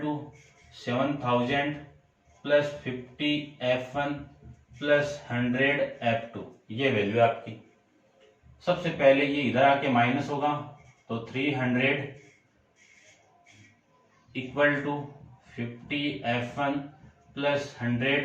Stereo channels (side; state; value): both; identical; correlation 1.00